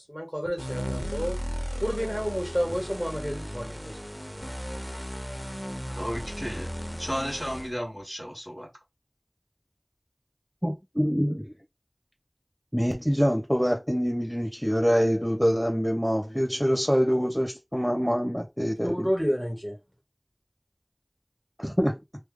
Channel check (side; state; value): both; identical; correlation 1.00